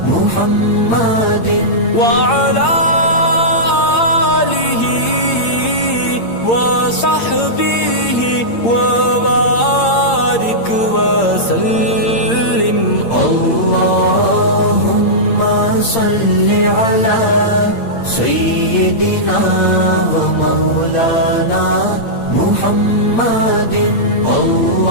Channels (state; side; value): late; right; 8.7 ms